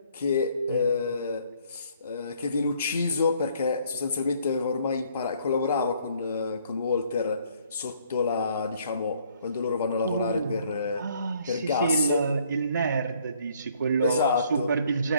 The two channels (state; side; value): inverted; both; correlation -0.64